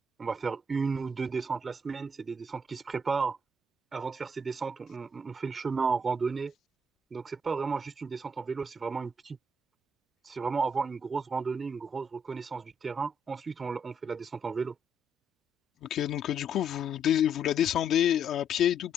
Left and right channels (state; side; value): normal; both; correlation 0.72